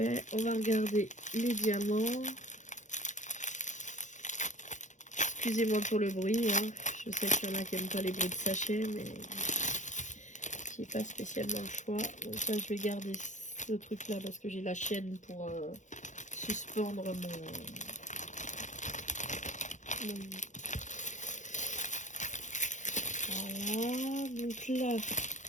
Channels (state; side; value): late; right; 0.35 ms